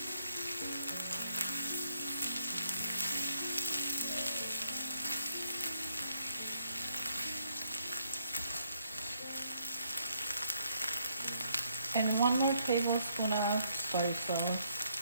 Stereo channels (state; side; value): inverted; both; correlation -0.71